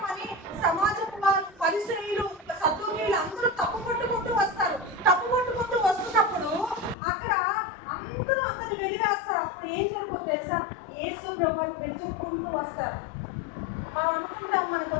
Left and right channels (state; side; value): drops out; right; at 7.0 s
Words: అని సమాజపు వాళ్ళు పరిశ్రమలు సద్దునీళ్ళు అందరూ తప్పు పట్టుకుంటూ వస్తారు. తప్పు పట్టుకుంటూ వస్తున్నప్పుడు అక్కడ అందరూ అతన్ని వెలివేస్తారు. అప్పుడు ఏం జరుగుతుంది తెలుసా? యేసు ప్రభువుని వెతుక్కుంటూ వస్తారు. మనం అనుకుంటాం మనకు